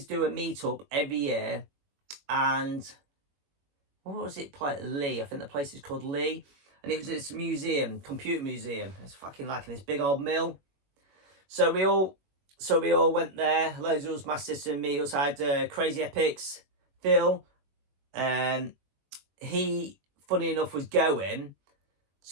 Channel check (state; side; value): late; left; 21 ms